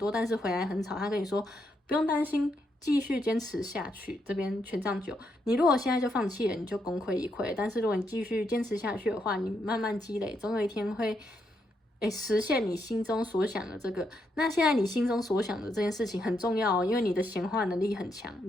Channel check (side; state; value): both; normal; correlation 0.79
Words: 但是回来很少，他跟你说不用担心，继续坚持下去。这边权杖9，你如果现在就放弃了，你就功亏一篑。但是如果你继续坚持下去的话，你慢慢积累，总有一天会实现你心中所想的这个。那现在你心中所想的这件事情很重要哦，因为你的显化能力很强，